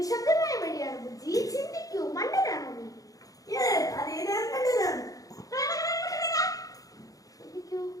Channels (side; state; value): right; late; 0.17 ms